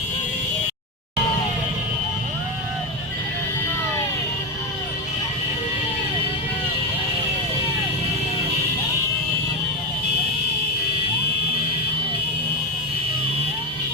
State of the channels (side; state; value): both; normal; correlation 0.12